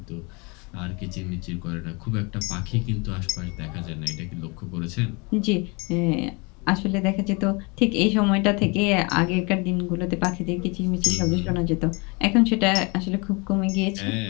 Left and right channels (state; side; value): quieter; right; 29.4 dB